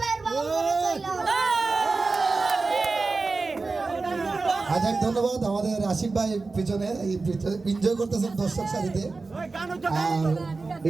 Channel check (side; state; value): left; quieter; 3.9 dB